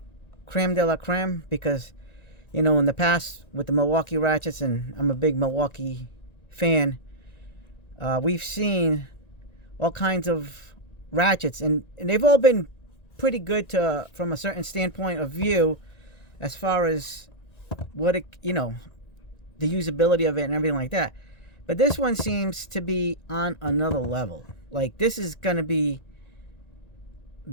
creme de la creme, because, you know, in the past with the Milwaukee ratchets, and I'm a big Milwaukee fan, we've seen all kinds of ratchets, and they've all been pretty good from a certain standpoint of view, as far as what it, the usability of it and everything like that. But this one seems to be on another level. Like, this is gonna be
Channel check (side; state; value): right; late; 1.9 ms